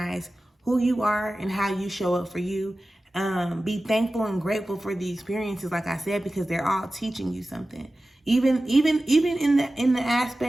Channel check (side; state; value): both; normal; correlation 0.95